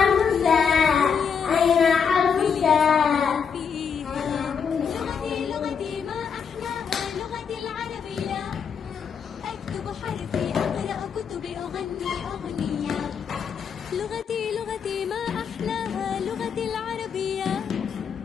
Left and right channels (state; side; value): quieter; right; 6.7 dB